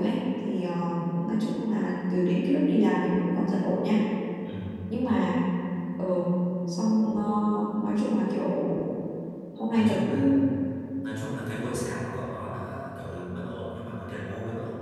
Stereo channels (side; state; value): both; identical; correlation 1.00